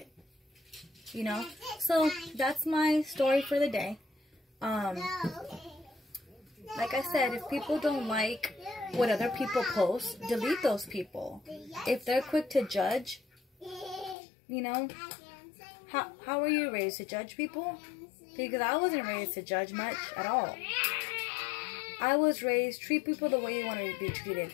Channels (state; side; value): drops out; right; at 14.2 s